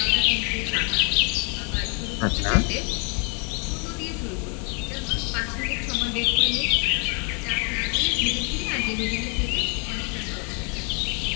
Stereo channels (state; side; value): quieter; right; 36.4 dB